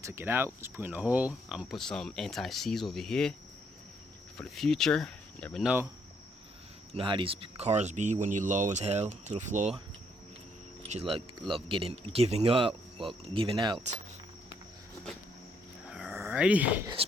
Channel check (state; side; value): normal; both; correlation 0.71